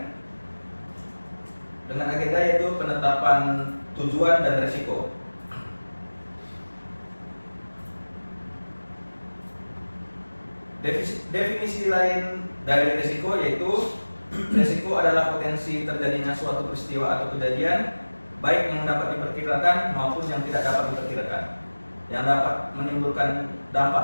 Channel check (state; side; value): inverted; both; correlation -1.00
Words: dengan agenda yaitu penetapan tujuan dan risiko. Definisi lain dari risiko yaitu risiko adalah potensi terjadinya suatu peristiwa atau kejadian baik yang dapat diperkirakan maupun yang tidak dapat diperkirakan, yang dapat menimbulkan